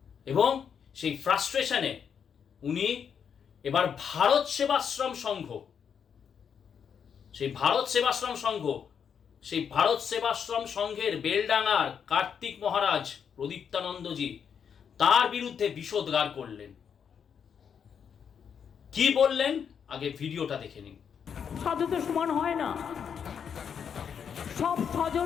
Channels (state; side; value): quieter; right; 7.4 dB